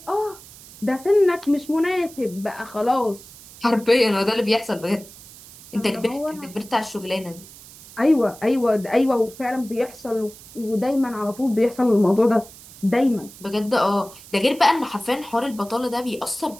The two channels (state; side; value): noise; right; hiss, 19 dB below the sound